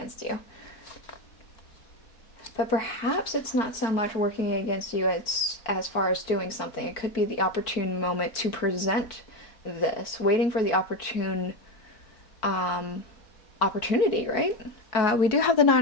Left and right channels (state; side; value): late; right; 4.5 ms